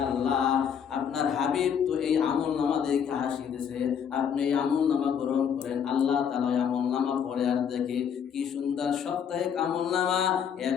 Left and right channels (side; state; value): right; quieter; 7.8 dB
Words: আল্লাহ, আপনার হাবিব তো এই আমল নামা দেখে হাসি দিছে, আপনি এই আমল নামা গ্রহণ করেন। আল্লাহ তাআলা আমল নামা পড়ে আর দেখে কি সুন্দর সাপ্তাহিক আমল নামা, এক